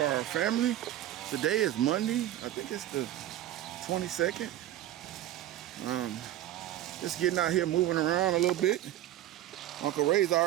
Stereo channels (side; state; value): left; quieter; 13.2 dB